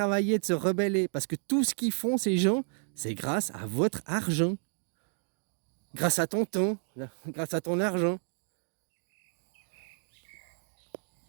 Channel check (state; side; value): silent; left; 57 dB below the other